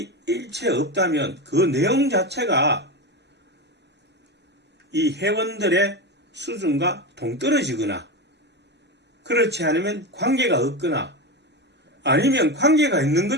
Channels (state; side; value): normal; both; correlation 0.20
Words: 일체 없다면 그 내용 자체가 이 회원들의 수준과 동떨어지거나, 그렇지 않으면 관계가 없거나, 아니면 관계가 있는